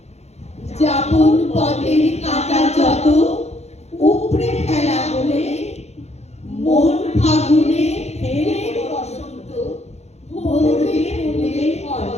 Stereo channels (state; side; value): late; right; 0.31 ms